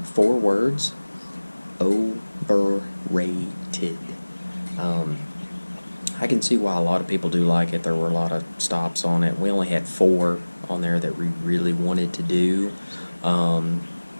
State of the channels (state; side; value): inverted; both; correlation -1.00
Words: 4 words: overrated. I can see why a lot of people do like it. There were a lot of stops on it. We only had 4 on there that we really wanted to do.